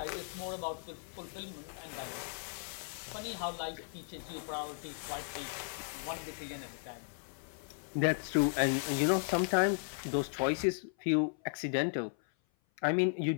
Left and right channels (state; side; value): silent; right; 54 dB below the other